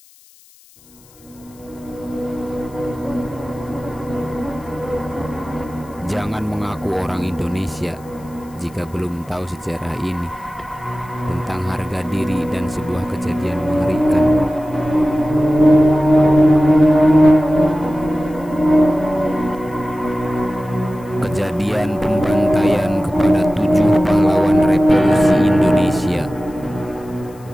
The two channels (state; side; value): noise; left; hiss, 28 dB below the sound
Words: Jangan mengaku orang Indonesia jika belum tahu sejarah ini, tentang harga diri dan sebuah kejadian mengerikan. Kejadian pembantaian kepada 7 pahlawan revolusi Indonesia.